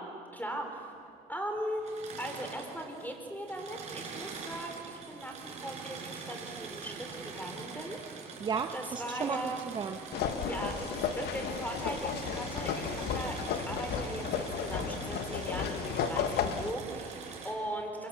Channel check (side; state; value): both; normal; correlation 0.37